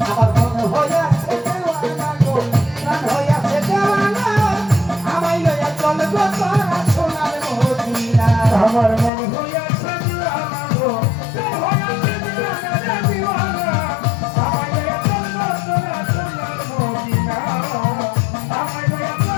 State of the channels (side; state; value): right; drops out; at 9.1 s